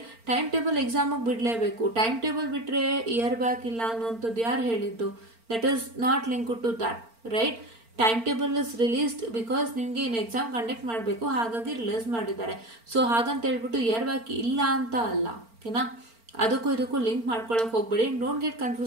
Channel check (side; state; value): left; late; 4.4 ms